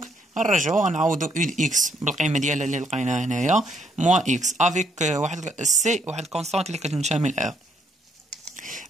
غنرجعو غنعوضو u د x بالقيمه ديالها اللي لقيناها هنايا موان x افيك واحد سي واحد كونستانت اللي كتنتمي ل r.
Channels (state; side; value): normal; both; correlation 0.71